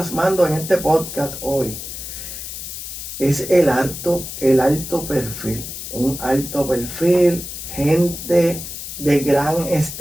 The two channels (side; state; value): left; noise; hiss, 9 dB below the sound